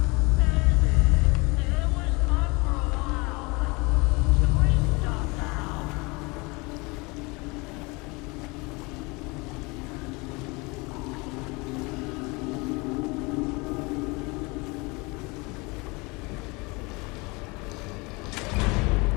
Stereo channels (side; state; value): right; quieter; 26.5 dB